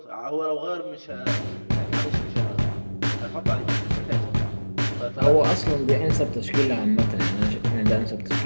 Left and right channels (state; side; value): inverted; both; correlation -1.00